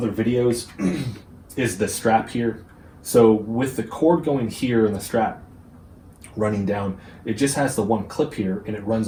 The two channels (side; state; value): both; identical; correlation 1.00